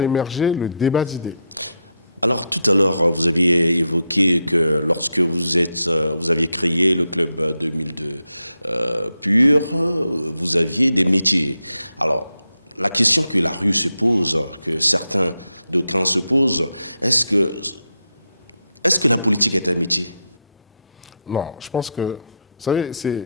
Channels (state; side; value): inverted; both; correlation -0.83